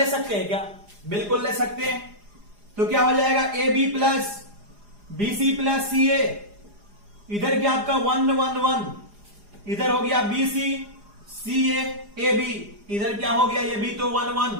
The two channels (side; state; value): left; late; 4.9 ms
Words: सकते हैं क्या? बिल्कुल ले सकते हैं। तो क्या हो जाएगा, AB plus BC plus CA, इधर क्या आपका 1 1 1, इधर हो गया BC CA AB, इधर क्या हो गया, ये भी तो 1